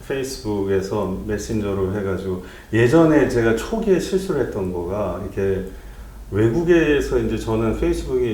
페이스북에서 메신저로 해가지고 예전에 제가 초기에 실수를 했던 거가 이렇게 외국에서 이제 저는 페이스북이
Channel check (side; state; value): both; identical; correlation 1.00